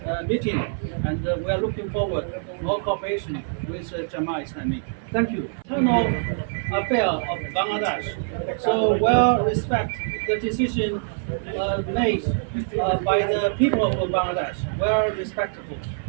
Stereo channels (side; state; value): left; silent; 59 dB below the other